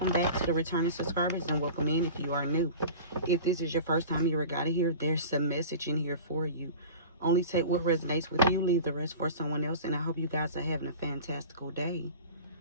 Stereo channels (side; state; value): both; inverted; correlation -0.37